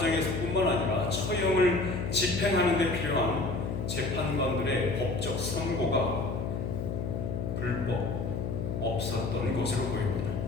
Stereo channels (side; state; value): left; noise; hum, 3 dB below the sound